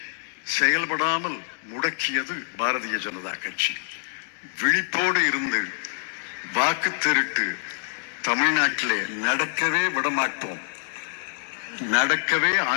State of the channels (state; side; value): silent; right; digital silence